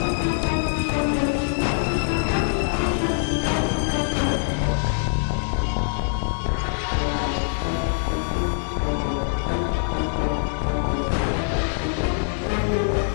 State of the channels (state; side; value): silent; right; digital silence